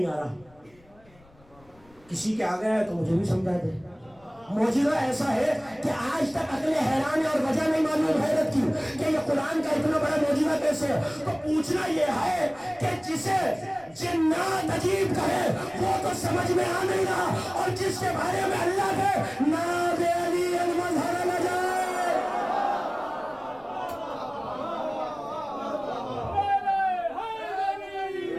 آ رہا۔ کسی کے آگے ہے تو مجھے بھی سمجھا دے۔ معجزہ ایسا ہے کہ آج تک عقل حیران ہے اور وجہ نہیں معلوم حیرت کی کہ یہ قرآن کا اتنا بڑا معجزہ کیسے ہے۔ تو پوچھنا یہ ہے کہ جسے جنات عجیب کہے وہ تو سمجھ میں آ نہیں رہا، اور جس کے بارے میں اللہ کے ناب علی المظہر نہ جائے۔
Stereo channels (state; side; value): noise; left; rumble, 28 dB below the sound